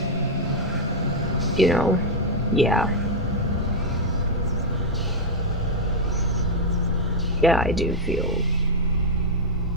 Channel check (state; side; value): normal; both; correlation -0.02